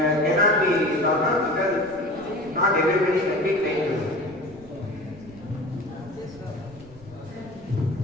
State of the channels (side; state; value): right; noise; rumble, 22 dB below the sound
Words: cannot be thought of because not everybody can be trained to it.